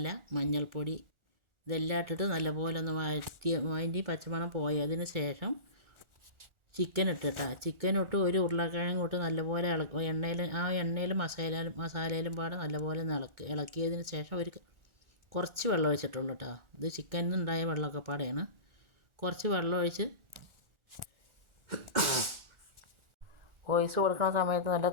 മഞ്ഞൾപ്പൊടി ഇതെല്ലാം ഇട്ടിട്ട് നല്ലപോലെ ഒന്ന് അതിൻ്റെ പച്ചമണം പോയതിന് ശേഷം ചിക്കൻ ഇട്ടിട്ടാ. ചിക്കൻ ഇട്ട് ഒരു ഉരുളക്കിഴങ്ങ് ഇട്ട് നല്ലപോലെ എണ്ണയിൽ മസാലയിലും പാടെ നല്ലപോലെ ഇളക്കിയതിന് ശേഷം കുറച്ച് വെള്ളം ഒഴിച്ചിട്ടുള്ളൂ കേട്ടോ. ഇത് ചിക്കനിൽ നിന്നുണ്ടായ വെള്ളമൊക്കെ പാടെയാണ്. കുറച്ച് വെള്ളം ഒഴിച്ച് വോയിസ് കൊടുക്കുന്ന സമയത്ത് നല്ല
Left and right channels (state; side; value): late; left; 1.4 ms